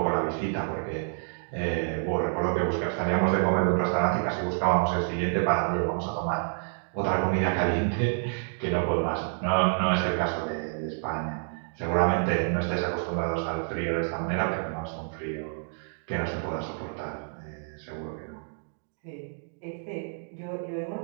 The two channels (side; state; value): left; silent; 59 dB below the other